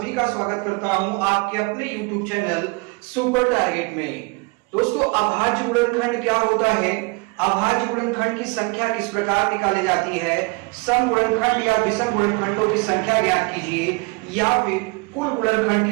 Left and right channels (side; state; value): left; quieter; 28.1 dB